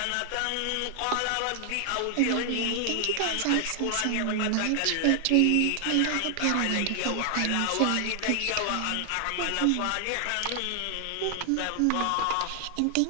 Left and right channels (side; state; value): both; different; correlation 0.00